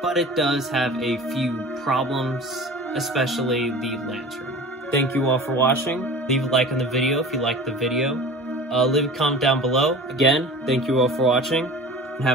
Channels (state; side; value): normal; both; correlation 0.38